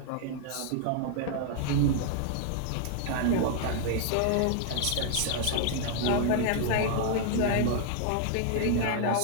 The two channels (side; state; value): both; different; correlation -0.01